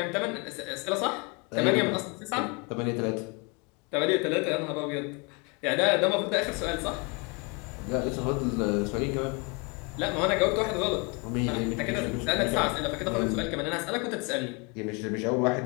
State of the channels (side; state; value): right; quieter; 31.2 dB